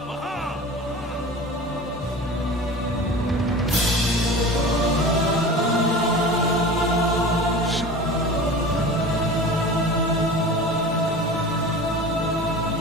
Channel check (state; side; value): normal; both; correlation 0.36